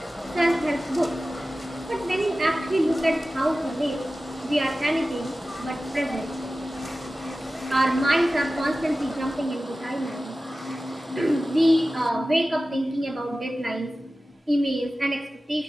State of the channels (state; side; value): normal; both; correlation 0.95